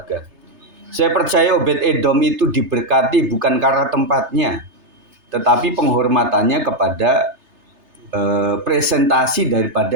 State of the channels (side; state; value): left; late; 3.3 ms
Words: Saya percaya Obed-Edom itu diberkati bukan karena tempatnya, tetapi penghormatannya kepada presentasi